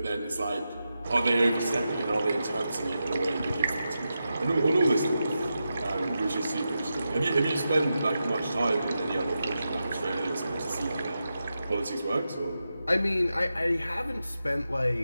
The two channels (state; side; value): inverted; both; correlation -0.89